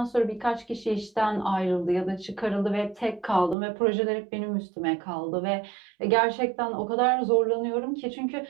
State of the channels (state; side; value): drops out; left; at 3.6 s